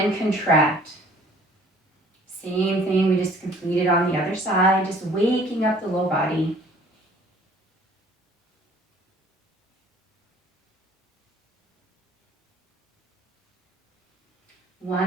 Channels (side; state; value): both; normal; correlation 0.54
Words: contract. Same thing we just completed on the other side, just waking up the low body.